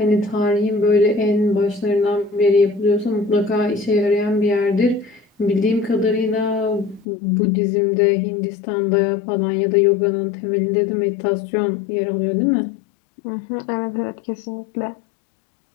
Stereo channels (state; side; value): drops out; right; at 7.1 s